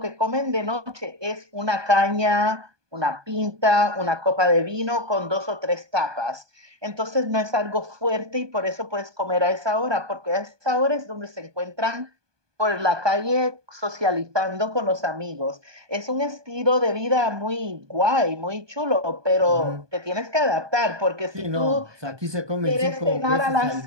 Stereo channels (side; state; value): left; late; 1.2 ms